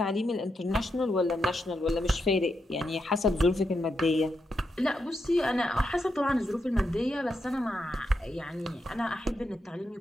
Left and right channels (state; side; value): normal; both; correlation 0.84